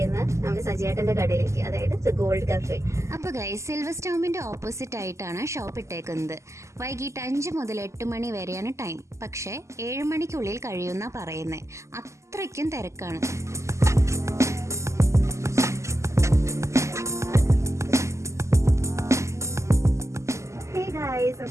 നമ്മുടെ സജിയേട്ടന്റെ കടയിലേക്ക്, അതായത് ദ ഗോൾഡ് കഫേ. അപ്പോൾ ഗൈസ്, സിൽവർ സ്റ്റോമിൻ്റെ ഓപ്പോസിറ്റ് ആയിട്ടാണ് ഷോപ്പ് ഇട്ടേക്കുന്നത്. വൈകിട്ട് 5 മുതൽ 8 മണി വരെയാണ് ടൈം. പക്ഷേ 7 മണിക്കുള്ളിൽ കഴിയുന്ന പറയുന്നത്. അത്രയ്ക്കും തിരക്കാണ്.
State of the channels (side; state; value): left; late; 0.14 ms